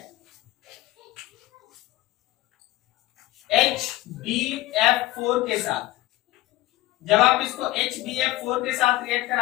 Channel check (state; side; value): quieter; right; 17.6 dB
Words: HbF4 के साथ। जब आप इसको HbF4 के साथ रिएक्ट